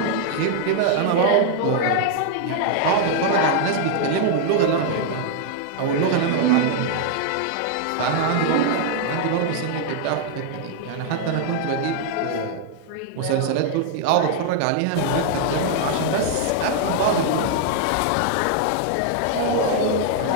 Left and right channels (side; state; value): both; different; correlation -0.01